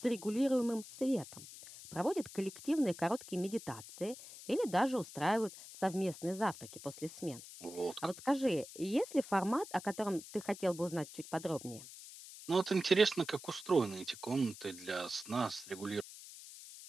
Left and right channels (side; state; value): left; noise; hiss, 15 dB below the sound